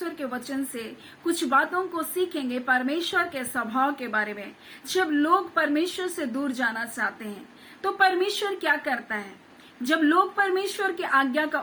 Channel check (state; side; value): identical; both; correlation 1.00